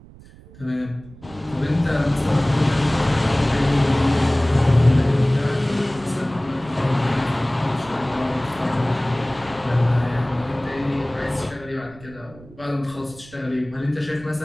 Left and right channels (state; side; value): noise; right; rumble, 21 dB below the sound